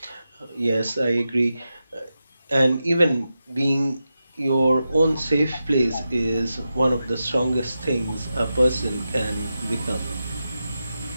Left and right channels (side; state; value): both; inverted; correlation -0.90